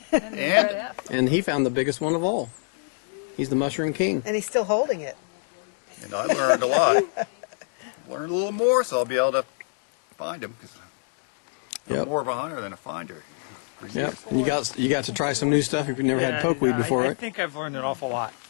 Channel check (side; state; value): right; silent; 57 dB below the other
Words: And, And And he found the biggest one of all. He's the mushroom king. And he's still holding it. And I learned a lot. Learned a little more, so I'll be able to find them. Because I'm Yep. more of a hunter than a finder. Yep. And you got to try some new stuff if you've never had pokeweed before, I right? think I've learned an awful lot